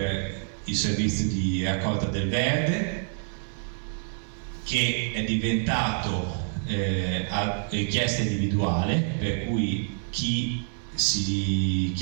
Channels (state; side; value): silent; left; 58 dB below the other